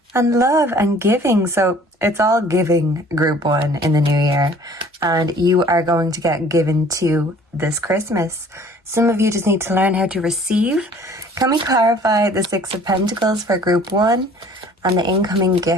and love and giving. So it's all giving, group 1, in the new year. And you are going to get given to this Christmas. Some of you just need to learn how to receive. Can we clarify the 6 of Pentacles for group 1 and the incoming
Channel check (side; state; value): both; normal; correlation 0.52